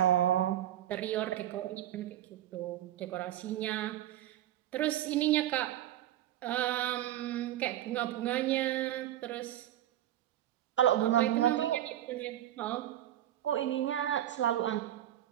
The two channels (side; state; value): left; quieter; 12.5 dB